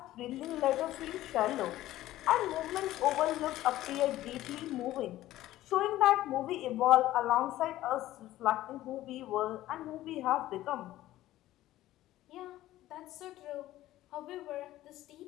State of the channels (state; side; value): quieter; right; 15.0 dB